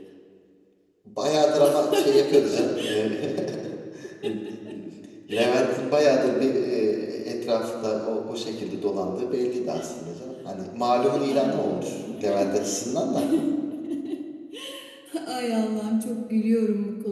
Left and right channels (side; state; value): both; identical; correlation 1.00